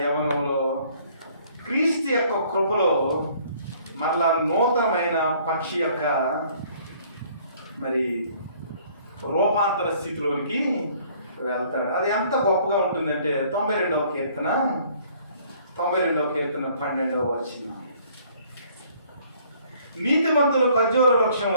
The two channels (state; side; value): inverted; both; correlation -0.59